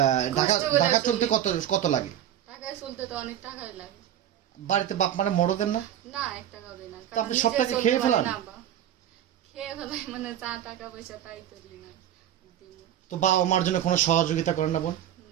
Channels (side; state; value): left; quieter; 11.1 dB